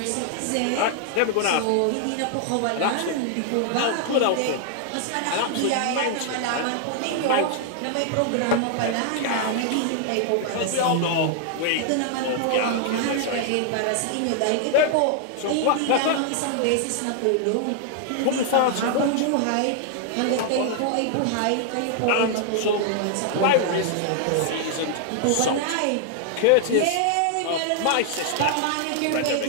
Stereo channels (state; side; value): different; both; correlation 0.00